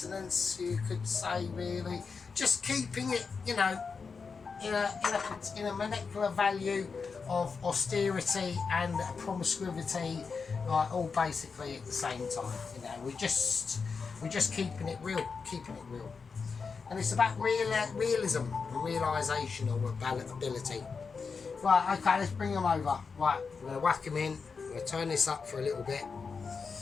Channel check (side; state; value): right; quieter; 5.2 dB